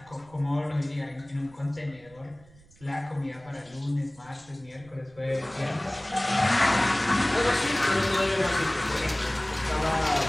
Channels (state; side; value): noise; right; rumble, 26 dB below the sound